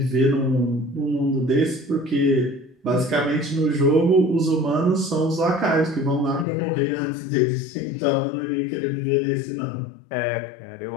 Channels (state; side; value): drops out; right; at 6.5 s